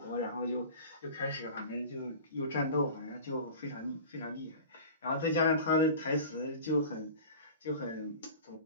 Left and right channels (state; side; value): inverted; both; correlation -0.37